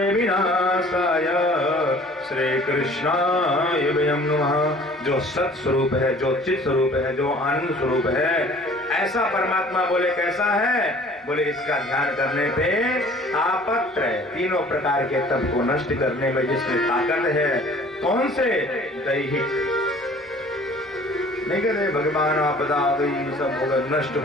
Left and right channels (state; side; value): normal; both; correlation 0.50